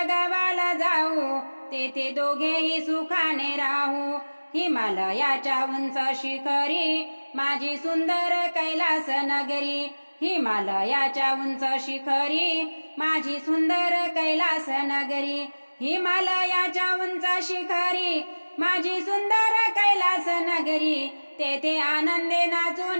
गावाला जाऊ, तेथे दोघेही सुखाने राहू। हिमालयाच्या उंच शिखरी, माझी सुंदर कैलास नगरी। हिमालयाच्या उंच शिखरी, माझी सुंदर कैलास नगरी। हिमालयाच्या उंच शिखरी, माझी सुंदर कैलास नगरी। तेथे आनंदे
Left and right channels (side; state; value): both; inverted; correlation -1.00